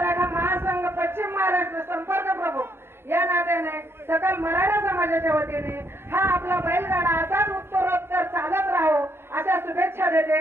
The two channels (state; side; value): late; left; 0.11 ms